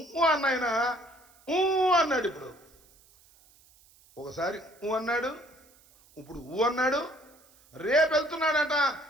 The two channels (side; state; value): right; noise; hiss, 29 dB below the sound